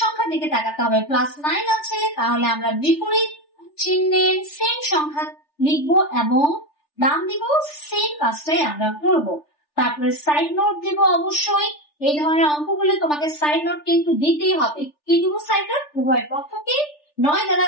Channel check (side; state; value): right; late; 3.4 ms